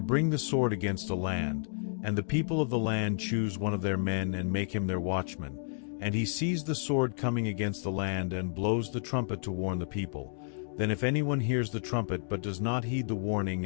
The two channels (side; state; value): right; silent; digital silence